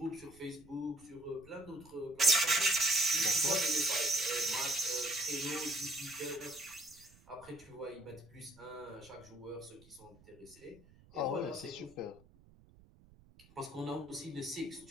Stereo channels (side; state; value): right; noise; rumble, 25 dB below the sound